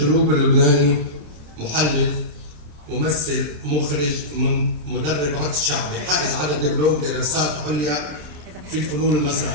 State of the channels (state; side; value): late; left; 26 ms